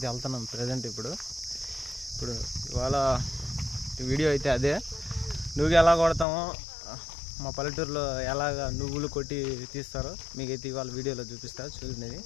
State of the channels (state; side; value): drops out; right; at 6.2 s